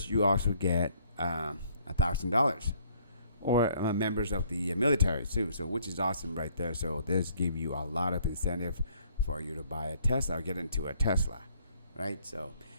you also get $1,000, or members of the military too, so which is awesome right there. So this give you a lot of incentive for you to buy a Tesla or get into a Tesla, right? So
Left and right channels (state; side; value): inverted; both; correlation -0.63